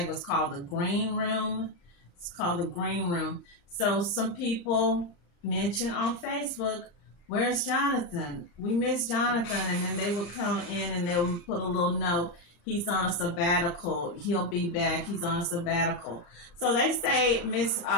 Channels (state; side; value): late; right; 35 ms